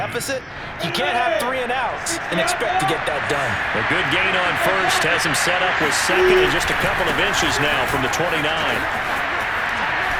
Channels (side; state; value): both; identical; correlation 1.00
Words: You can't have 3 and outs and expect to get that done. A good gain on first has him set up with second and just a couple of inches now from the 29.